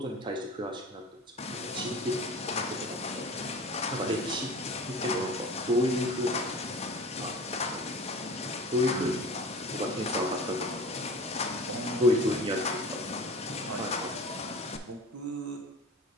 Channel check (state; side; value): normal; both; correlation 0.37